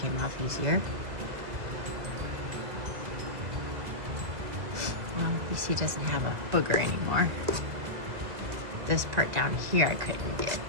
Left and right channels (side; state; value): left; late; 1.9 ms